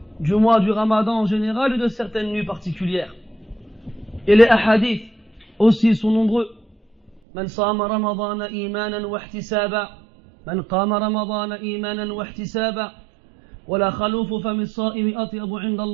du mois du Ramadan en général et de certaines nuits particulières. Et les ahadiths aussi sont nombreux. من صام رمضان إيمانا واحتسابا من قام رمضان إيمانا واحتسابا ولا خلوف فم الصائم أطيب عند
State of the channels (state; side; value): drops out; left; at 7.2 s